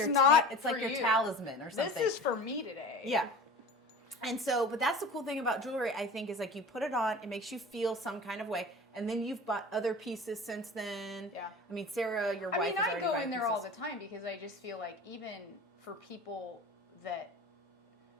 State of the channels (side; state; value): both; normal; correlation 0.38